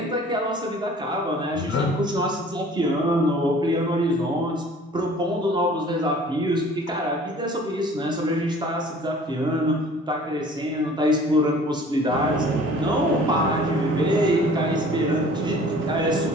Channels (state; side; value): normal; both; correlation 0.49